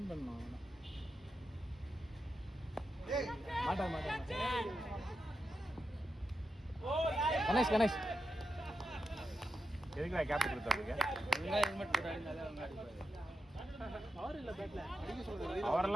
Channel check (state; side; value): normal; both; correlation 0.88